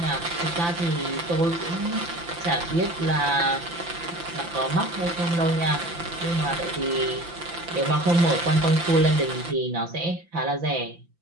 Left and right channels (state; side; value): late; left; 5.8 ms